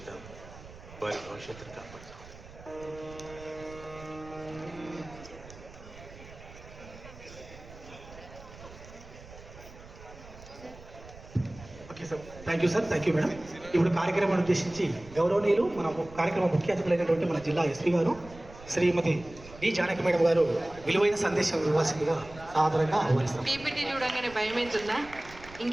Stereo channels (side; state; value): right; noise; rumble, 18 dB below the sound